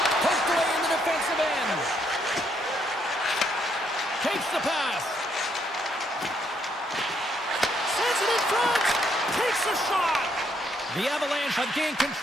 Poked away in the defensive end. Takes the pass. Sends it in front. Takes a shot. The Avalanche have gained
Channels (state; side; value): normal; both; correlation 0.73